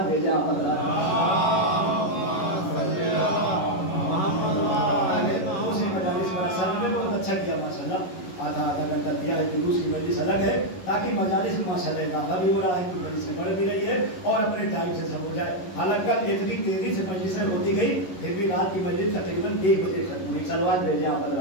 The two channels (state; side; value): late; right; 11 ms